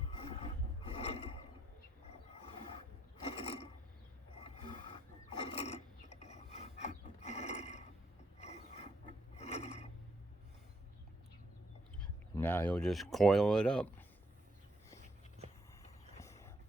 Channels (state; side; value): normal; both; correlation 0.73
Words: Now he'll just coil it up,